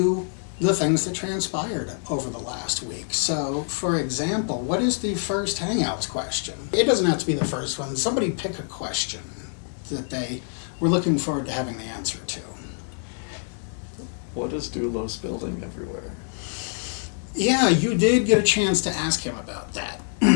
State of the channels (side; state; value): right; silent; 61 dB below the other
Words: the things that transpired over the last week. So, for example, what is the first Hangouts question? It doesn't have to be the first one. Somebody pick a question that they were looking forward to having the answer to. What is Doulos building everywhere? Yeah, you did get a chance to ask him about that.